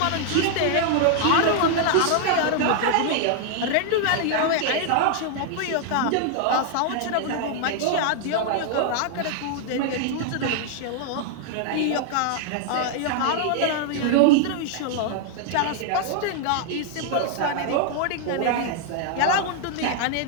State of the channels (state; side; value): different; both; correlation 0.00